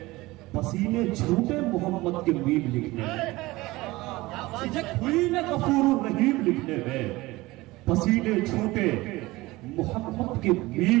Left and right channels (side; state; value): left; quieter; 20.1 dB